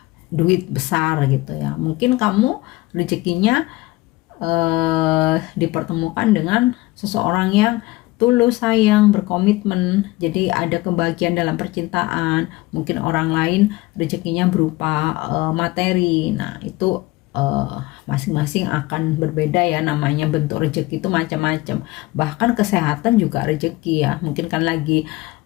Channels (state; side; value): quieter; right; 20.0 dB